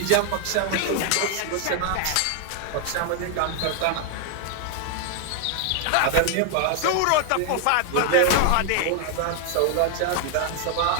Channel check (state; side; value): different; both; correlation 0.00